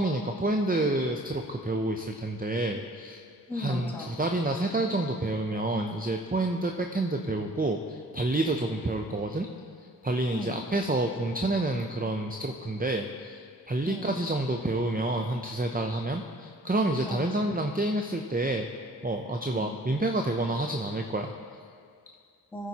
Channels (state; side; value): normal; both; correlation 0.54